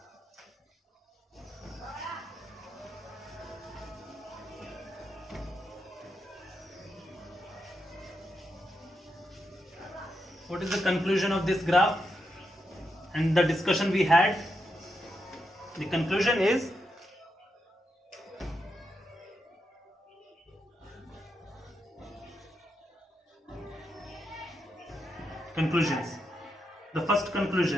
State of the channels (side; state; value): both; normal; correlation 0.84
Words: What is the conclusion of this graph and the discussion we had? The conclusion is conclusions. The first